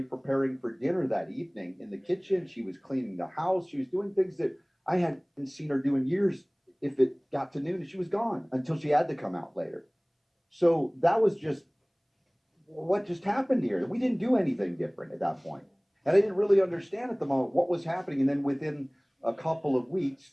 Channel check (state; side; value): identical; both; correlation 1.00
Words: preparing for dinner that evening in the kitchen. She was cleaning the house. She was doing things that I hadn't seen her do in years. If it got to noon, she was gone until she had to come out later. So that was just what just happened here. We didn't do anything different at that point. And I didn't really understand at the moment what was happening. And then within a couple of weeks